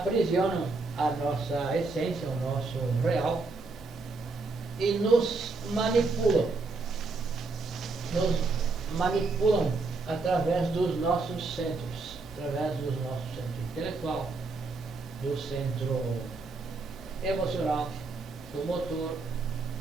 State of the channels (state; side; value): quieter; left; 3.8 dB